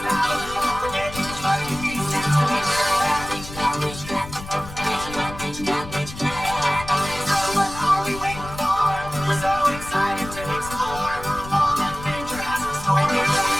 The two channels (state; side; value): noise; left; rumble, 13 dB below the sound